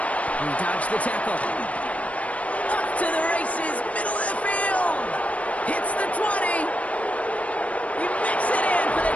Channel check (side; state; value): right; late; 0.066 ms